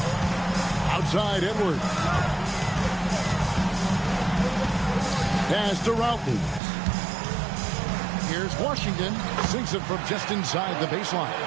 Outside Edwards. Pass to Roughton. Here's Washington. Sinks it from just inside the baseline.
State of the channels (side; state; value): left; drops out; at 6.6 s